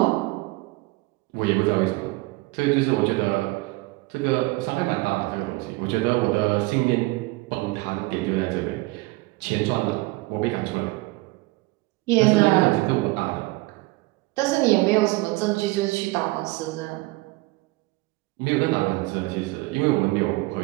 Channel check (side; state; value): left; quieter; 22.1 dB